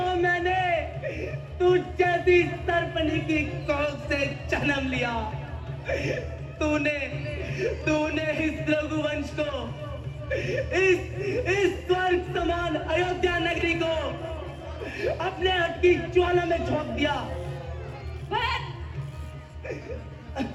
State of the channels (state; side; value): identical; both; correlation 1.00